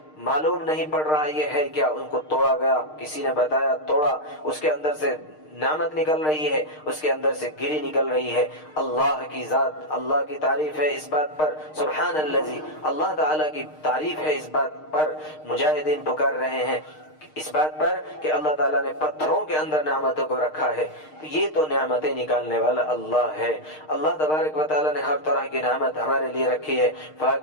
معلوم نہیں پڑ رہا یہ ہے کیا، ان کو توڑا گیا، کسی نے بتایا، توڑا، اس کے اندر سے نعمت نکل رہی ہے، اس کے اندر سے گری نکل رہی ہے۔ اللہ کی ذات، اللہ کی تعریف ہے اس بات پر، سبحان الذی، اللہ تعالیٰ کی تعریف ہے اس بات پر۔ مجاہدین پکار رہے ہیں اس بات پر کہ اللہ تعالیٰ نے پتھروں کے اندر نعمتوں کو رکھا ہے، تو یہ تو نعمتیں نکالنے والا اللہ ہے۔ اللہ تبارک و تعالیٰ نے ہر طرح کی نعمت ہمارے لیے رکھی ہے،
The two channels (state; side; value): late; right; 6.5 ms